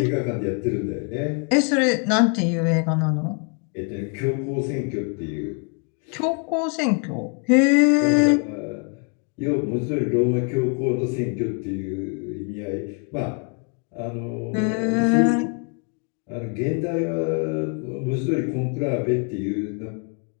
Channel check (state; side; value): quieter; right; 37.9 dB